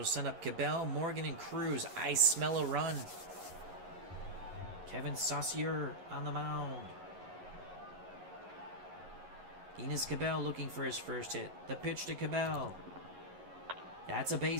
send up Cabell, Morgan, and Cruz. I smell a run. Kevin Saucier on the mound. Enos Cabell looking for his first hit. The pitch to Cabell. That's a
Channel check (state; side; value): late; left; 11 ms